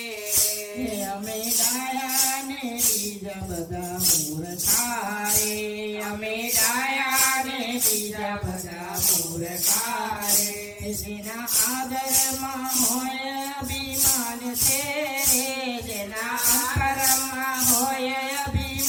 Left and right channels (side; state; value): both; identical; correlation 1.00